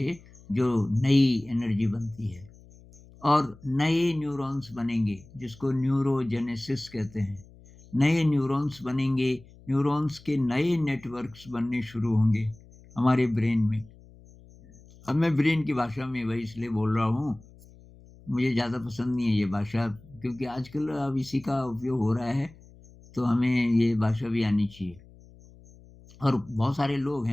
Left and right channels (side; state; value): left; noise; hum, 23 dB below the sound